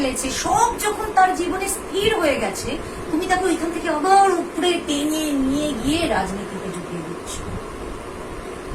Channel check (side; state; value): both; identical; correlation 1.00